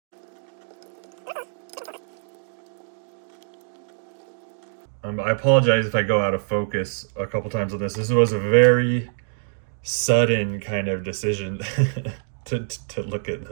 I apologize if I go out of focus a couple times on this. This was a very sudden kind of decision to look at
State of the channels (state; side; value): silent; left; digital silence